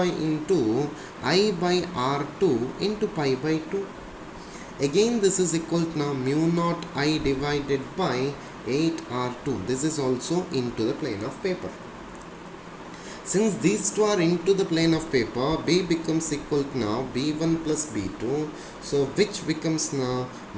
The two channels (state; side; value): identical; both; correlation 1.00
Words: into I by R2 into pi by 2. Again this is equal to now mu naught I divided by 8 R2. This is also into the plane of paper. Since these two are into the plane of paper, B becomes equal to now B1 plus B2. So which becomes now